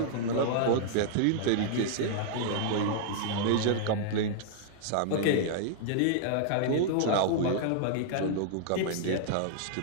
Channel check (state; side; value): different; both; correlation -0.01